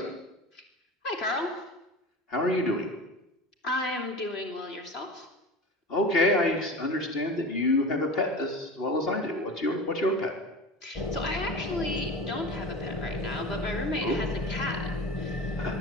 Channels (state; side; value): normal; both; correlation 0.32